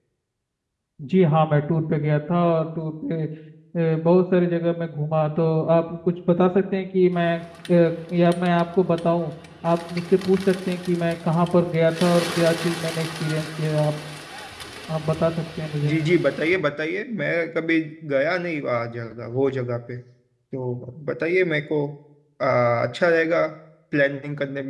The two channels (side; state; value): both; identical; correlation 1.00